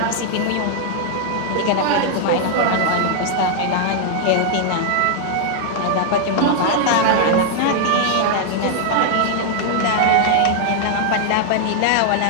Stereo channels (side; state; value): both; different; correlation 0.00